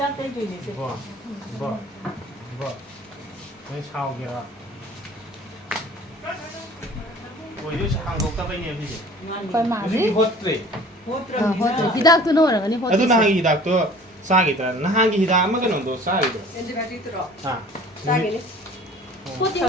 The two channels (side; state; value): both; normal; correlation 0.48